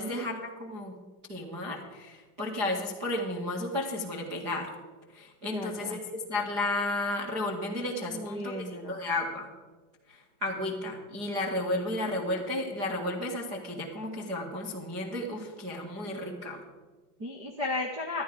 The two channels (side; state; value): left; late; 4.9 ms